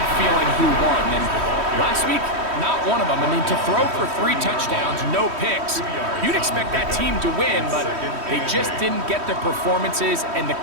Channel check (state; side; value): late; left; 3.1 ms